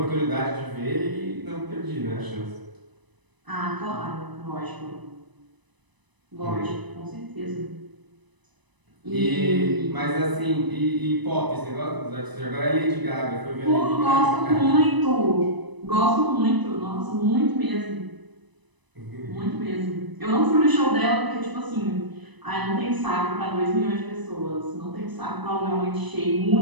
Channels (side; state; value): left; late; 1.0 ms